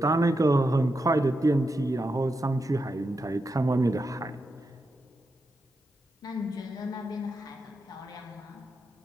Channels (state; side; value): normal; both; correlation 0.86